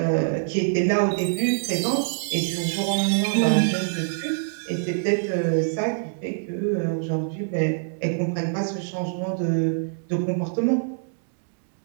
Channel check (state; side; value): silent; left; digital silence